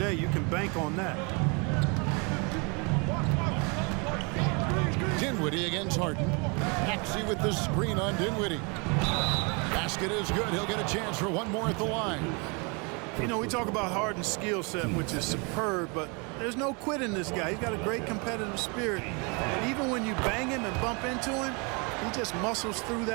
You can bank on that. Dinwiddie against Harden. Maxey with the screen on Dinwiddie. Basket is good. He'll get a chance for one more at the line. You know, we talk about Harden's skill set, which is superb, but there's no quit in this guy. He's got a great competitive spirit. And even when you bang him and bump into him, he just muscles through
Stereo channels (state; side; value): quieter; left; 32.0 dB